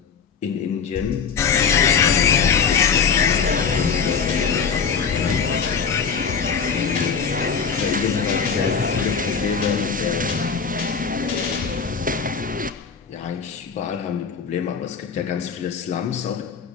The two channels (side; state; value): right; quieter; 6.2 dB